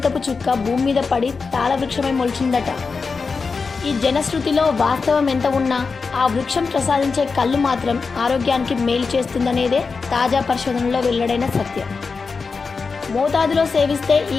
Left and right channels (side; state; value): right; quieter; 4.7 dB